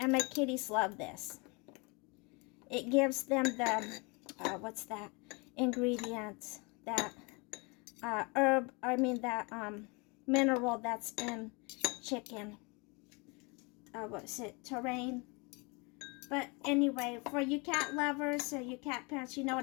my kitties love this. It gives them the, ingredient, that mineral that's in chicken. Terrain. But anyway, for you cat lovers or you cat parents, you know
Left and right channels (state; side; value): quieter; right; 29.4 dB